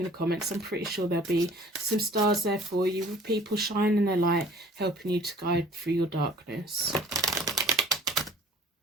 the comments. I'm pretty sure there'll be some stars there for you, with people shining their light, helping you to guide through your darkness.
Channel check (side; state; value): both; normal; correlation 0.51